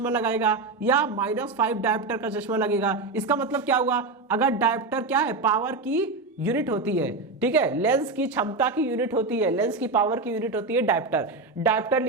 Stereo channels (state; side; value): quieter; left; 3.6 dB